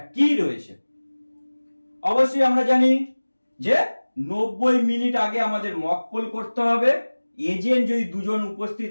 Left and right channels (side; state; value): both; inverted; correlation -1.00